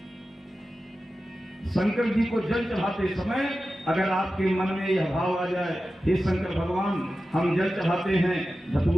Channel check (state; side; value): normal; both; correlation 0.93